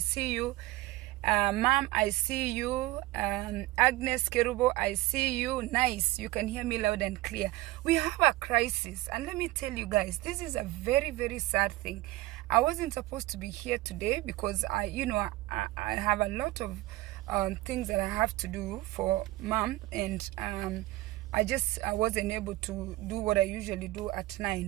you. Mom, I see you. Agnes Kerubo, I see you. Nice. You can hear me loud and clear. We have a crisis. And let me tell you guys, this is a very, very sad thing. I wasn't supposed to be here today because I have a lot of things that I have to do for Mom, and I wasn't able to do what I usually do at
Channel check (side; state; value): left; quieter; 18.5 dB